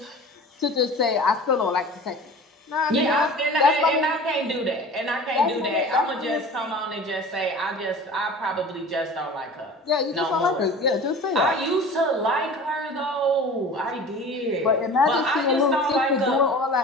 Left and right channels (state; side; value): normal; both; correlation 0.39